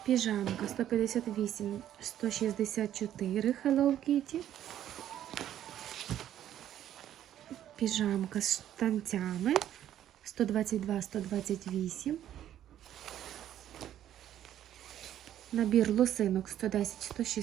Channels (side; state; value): left; quieter; 11.4 dB